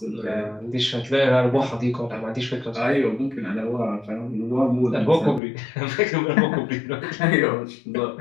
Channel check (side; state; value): right; drops out; at 5.4 s